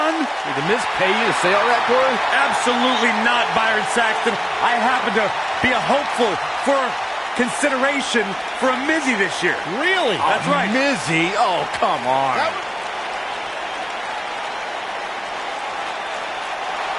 Did The Miz pay you to say all that, Corey? Absolutely not, Byron Saxton. I happen to be a hopeful for consideration for a Mizzy this year. Really? That's right. Mizzy? Oh, come on.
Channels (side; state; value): both; identical; correlation 1.00